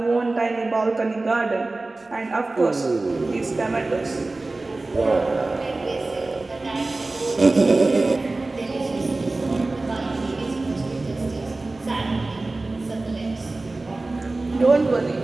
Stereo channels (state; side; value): quieter; left; 3.2 dB